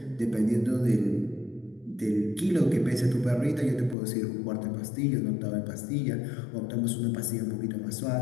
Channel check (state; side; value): drops out; right; at 4.0 s